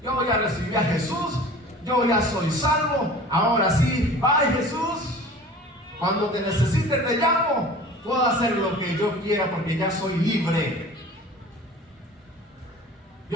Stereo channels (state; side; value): normal; both; correlation 0.42